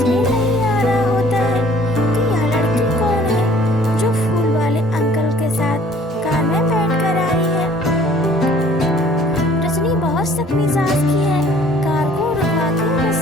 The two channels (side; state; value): both; normal; correlation 0.55